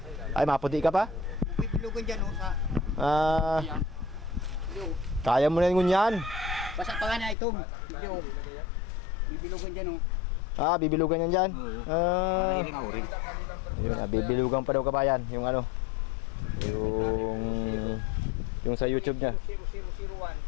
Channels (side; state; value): right; drops out; at 7.4 s